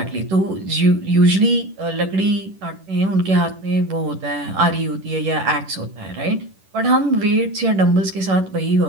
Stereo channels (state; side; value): late; left; 10 ms